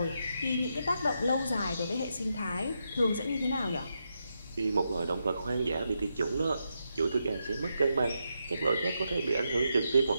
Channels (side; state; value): both; inverted; correlation -0.84